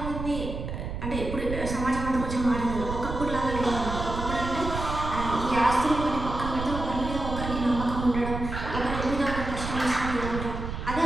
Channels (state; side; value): noise; right; rumble, 6 dB below the sound